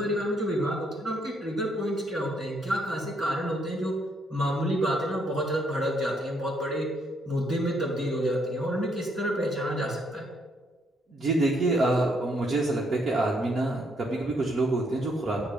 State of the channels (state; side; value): normal; both; correlation 0.72